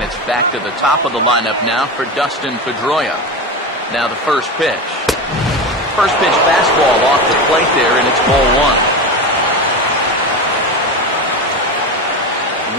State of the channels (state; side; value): normal; both; correlation 0.22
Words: it's back to the top of the lineup now for Dustin Pedroia. Now the first pitch. First pitch fastball off the plate there, and it's ball